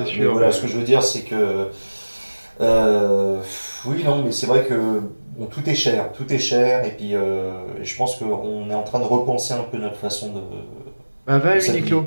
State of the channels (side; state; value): both; inverted; correlation -1.00